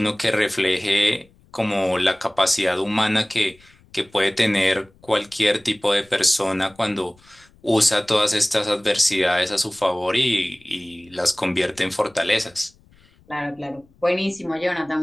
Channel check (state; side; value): noise; left; rumble, 30 dB below the sound